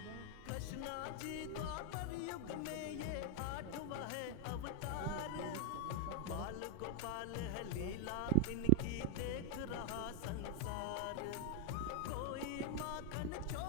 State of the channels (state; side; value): different; both; correlation 0.00